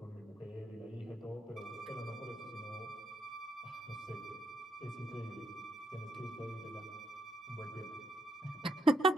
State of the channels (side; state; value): both; normal; correlation 0.77